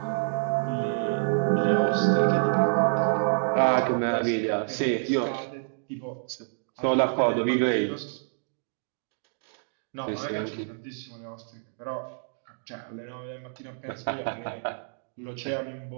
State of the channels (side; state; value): left; silent; digital silence